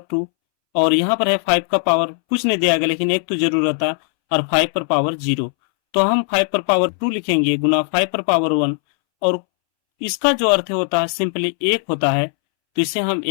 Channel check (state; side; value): silent; right; 65 dB below the other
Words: 2 और यहाँ पर है 5 का पावर कुछ नहीं दिया गया लेकिन एक तो जरूर रहता और 5 पर पावर 0, तो हम 5 पर पावर 2 लिखेंगे गुना 5 पर पावर 1 और इसका जो अर्थ होता है सिंपली 1 होता है तो इसे हम